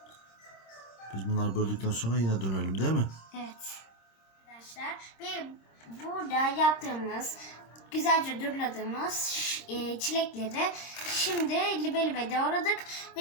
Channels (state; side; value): late; right; 26 ms